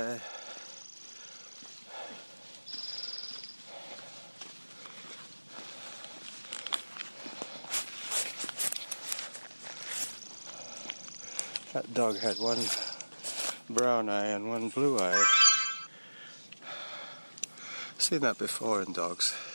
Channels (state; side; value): inverted; both; correlation -1.00